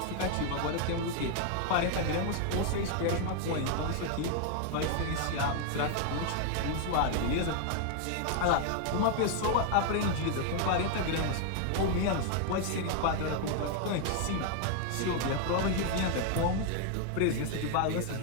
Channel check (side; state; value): both; different; correlation 0.00